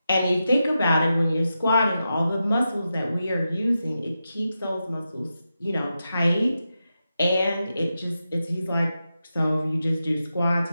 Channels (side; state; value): both; inverted; correlation -0.89